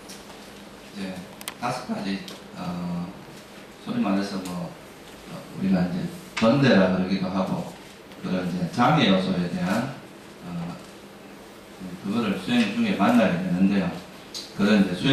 이제 5가지 소위 말해서 우리가 이제 번대라 그러기도 하고 그런 이제 장애 요소에 대한 그거를 수행 중에 만나게 되는데요. 그런 이제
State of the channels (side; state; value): both; identical; correlation 1.00